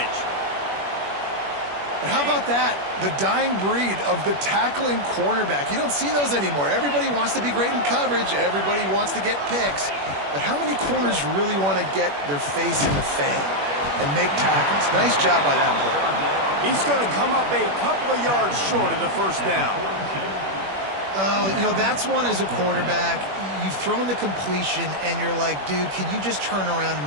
And how about that? The dying breed of the tackling cornerback. You don't see those anymore. Everybody wants to be great in coverage. Everybody wants to get picks. But how many corners really want to get their face in the fan and make tackles? Nice job by that player. He's going to come up a couple of yards short of the 1st down. Oh, you know, that's one as a quarterback. You've thrown the completion, and you're like, dude, can you just turn around and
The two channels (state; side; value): late; left; 21 ms